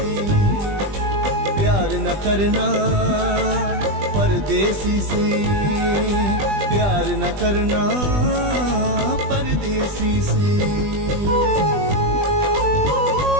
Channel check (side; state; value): left; late; 20 ms